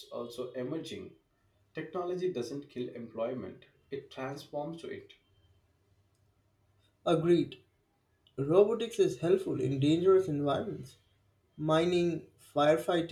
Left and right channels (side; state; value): both; identical; correlation 1.00